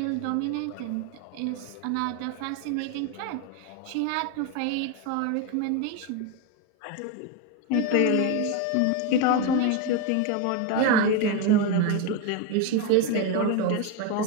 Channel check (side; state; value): both; different; correlation 0.02